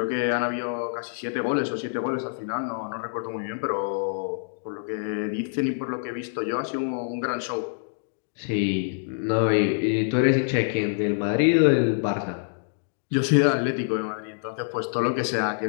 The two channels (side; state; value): right; silent; digital silence